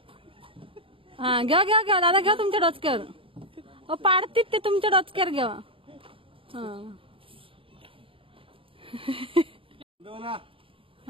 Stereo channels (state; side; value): late; left; 0.26 ms